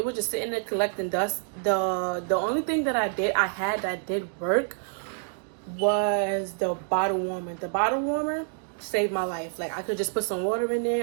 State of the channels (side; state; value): left; silent; digital silence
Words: was just sitting there collecting dust. The only thing that I had that did work was the bottle warmer. The bottle warmer saved my life. Like, I could just put some water in there.